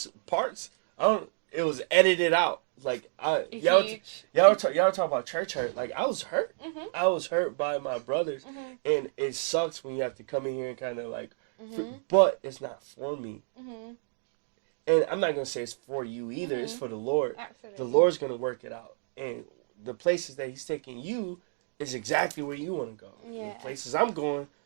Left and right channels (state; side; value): silent; left; digital silence